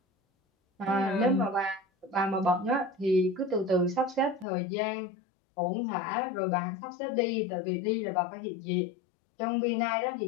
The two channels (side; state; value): right; drops out; at 4.5 s